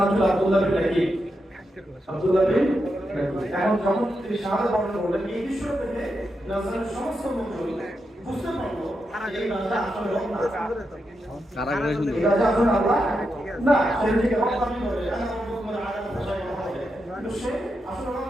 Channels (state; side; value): normal; both; correlation 0.86